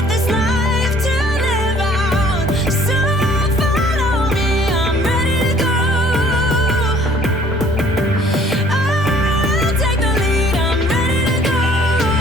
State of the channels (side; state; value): both; normal; correlation 0.56